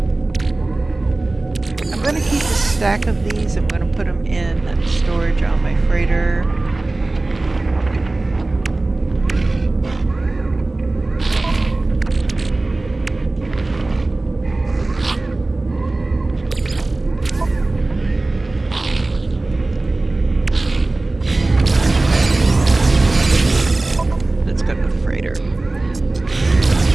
I'm going to keep a stack of these. I'm going to put them in storage on my freighter. Let's go to the freighter.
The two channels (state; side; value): quieter; left; 3.0 dB